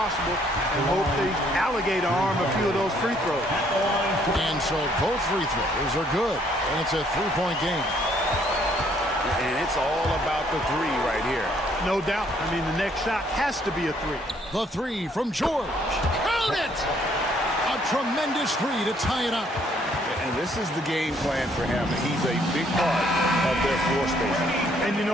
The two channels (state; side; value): normal; both; correlation 0.66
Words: and hope the alligator arm a few of those free throws. And so both free throws are good, and it's a 3-point game. And it's all about the three right here. No doubt. I mean, the next shot has to be a three. The three from George. Count it! A tremendous three to tie it up. And this is the game plan for him. He's a big part of their floor spacing. And you